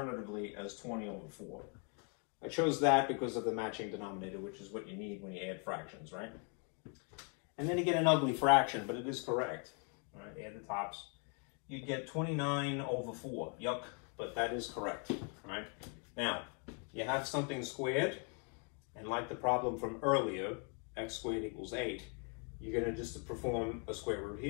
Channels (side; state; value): right; quieter; 39.2 dB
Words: as 20 over 4. I chose that because of the matching denominator, which is what you need when you add fractions, right? And then you get an ugly fraction, but it is correct. All right, add the tops. You'd get 29 over 4. Yuck, but that is correct, right? Now, you have something squared, and like the problem from earlier, x squared equals 8, you're going to just perform a square root